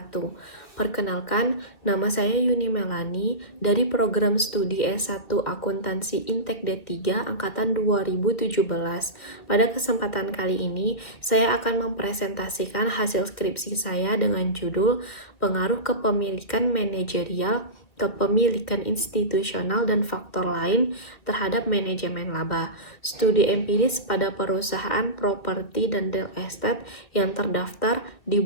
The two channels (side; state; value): right; late; 2.1 ms